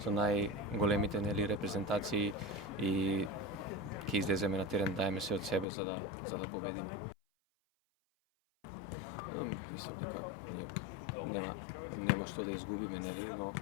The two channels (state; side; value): drops out; right; at 5.7 s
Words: најголемите репрезентации и ќе излеземе на терен, даеме се од себе за да победиме. Мислам дека ние нема што да изгубиме, но